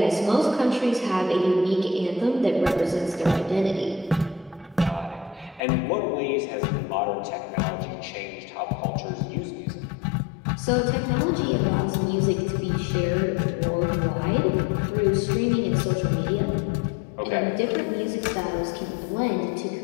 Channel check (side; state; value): right; drops out; at 5.6 s